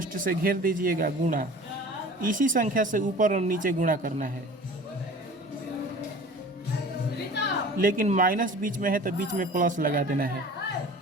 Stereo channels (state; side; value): normal; both; correlation 0.42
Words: से घेर दीजिएगा, गुणा इसी संख्या से ऊपर और नीचे गुणा करना है। लेकिन माइनस बीच में है तो बीच में प्लस लगा देना है।